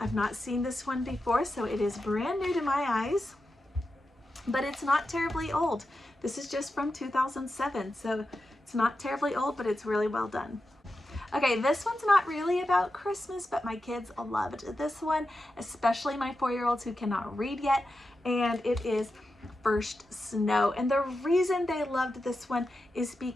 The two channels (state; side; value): normal; both; correlation 0.90